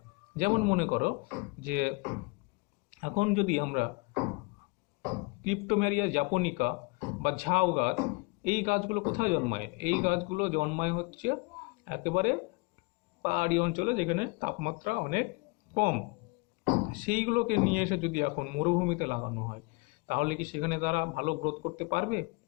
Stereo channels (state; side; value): quieter; right; 27.5 dB